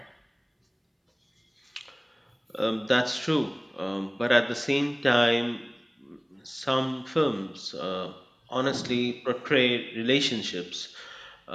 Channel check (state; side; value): identical; both; correlation 1.00